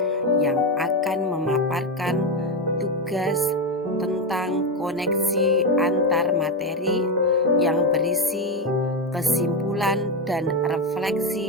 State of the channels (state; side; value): normal; both; correlation 0.10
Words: yang akan memaparkan tugas tentang koneksi antar materi yang berisi kesimpulan dan